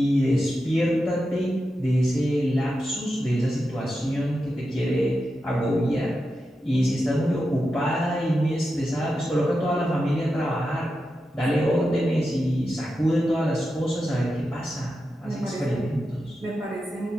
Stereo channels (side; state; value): both; normal; correlation 0.89